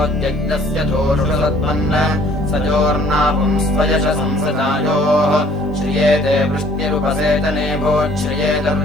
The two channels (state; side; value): normal; both; correlation 0.57